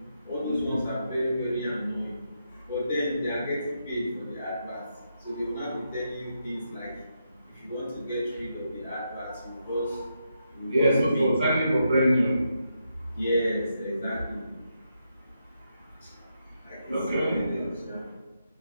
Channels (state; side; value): inverted; both; correlation -0.82